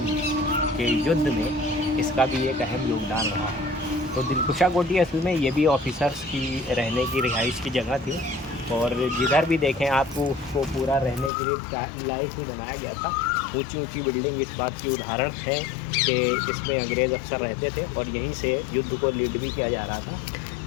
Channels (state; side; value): drops out; right; at 11.3 s